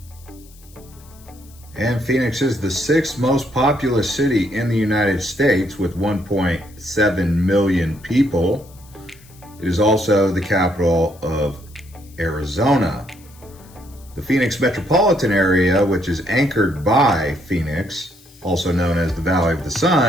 And Phoenix is the 6th most populous city in the United States with 1.7 million people. It is also the capital of Arizona. The Phoenix metropolitan area, which is anchored by Phoenix, also known as the Valley of the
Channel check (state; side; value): noise; left; hiss, 26 dB below the sound